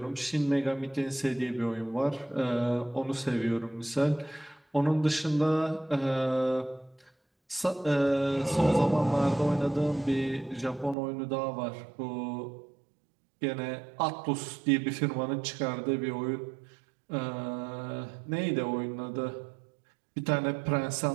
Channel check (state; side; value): drops out; left; at 11.0 s